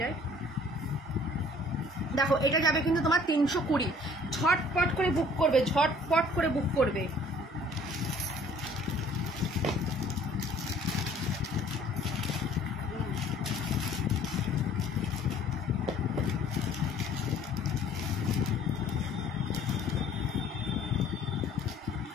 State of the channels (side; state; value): both; normal; correlation 0.54